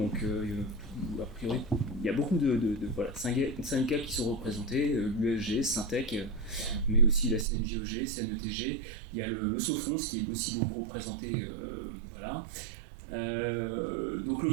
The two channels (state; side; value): drops out; left; at 7.5 s